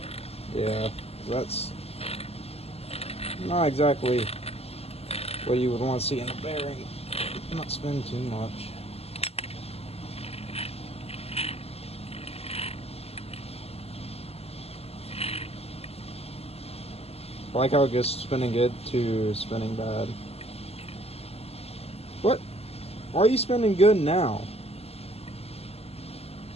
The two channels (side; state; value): right; late; 0.29 ms